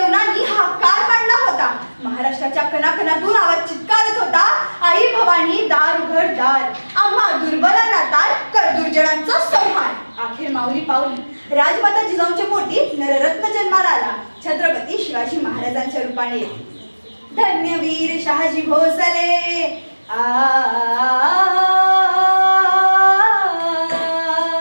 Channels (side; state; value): both; inverted; correlation -1.00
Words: हा काळ मांडला होता. महाराष्ट्राच्या कणाकणातून आवाज चित्कारत होता, आई भवानी दार उघड दार, आम्हा दुर्बलांना तार कर दुर्जनांचा संहार. अखेर माऊली पावली राजमाता जिजाऊंच्या पोटी नररत्न जन्माला आला, छत्रपती शिवाजी महाराजांच्या रूपाने. धन्यवीर शहाजी भोसले